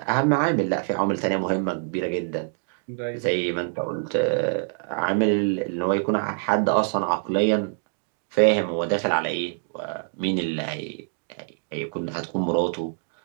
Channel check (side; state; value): left; silent; digital silence